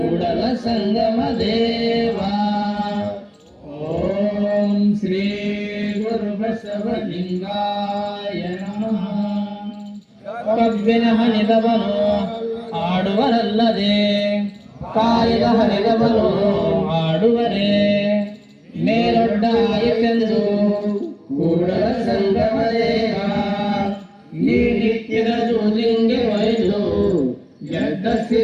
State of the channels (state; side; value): identical; both; correlation 1.00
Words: ಸಂಗಮ ದೇವ. ಓಂ ಶ್ರೀ ಗುರು ಬಸವಲಿಂಗಾಯ ನಮಃ. ಕಬ್ಬಿನ ಹನಿದವನು ಆಡುವರಲ್ಲದೆ ಕಾಯದ ಹನಿದವನು ಆಡುವರೇ ಮೇಲೊಡ್ಡ ಆಯಿತೆಂದು ಕೂಡಲ ಸಂಗಮ ದೇವ. ನೀ